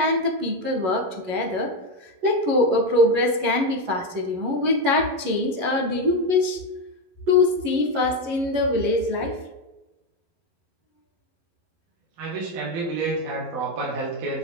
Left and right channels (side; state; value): left; late; 11 ms